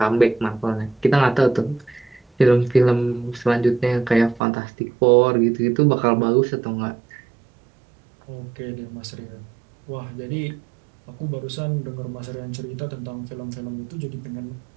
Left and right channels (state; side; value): drops out; left; at 4.4 s